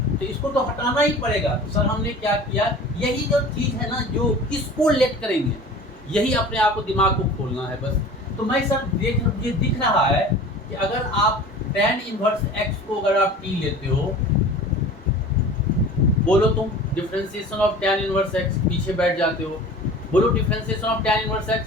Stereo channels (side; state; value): both; normal; correlation 0.41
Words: तो इसको तो हटाना ही पड़ेगा। तो सर हमने क्या किया, यही जो चीज़ है ना जो किसको लेट करेंगे, यही अपने आप को दिमाग को खोलना है बस। तो मैं सर मुझे दिख रहा है कि अगर आप tan इनवर्स x को अगर आप t लेते हो, बोलो तुम differentiation of tan inverse x, पीछे बैठ जाते हो, बोलो differentiation of tan inverse x।